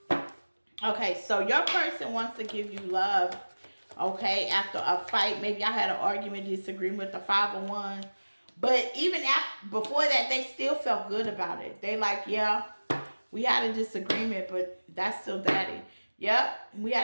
Okay, so your person wants to give you love, okay, after a fight. Maybe I had an argument, disagreement with the 5 of Wands. But even after, before that, they still felt good about it. They like, yeah, we had a disagreement, but that's still Daddy. Yep, we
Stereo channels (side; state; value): both; inverted; correlation -1.00